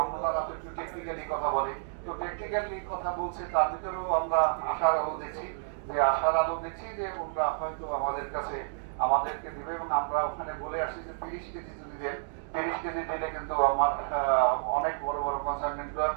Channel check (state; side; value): silent; left; digital silence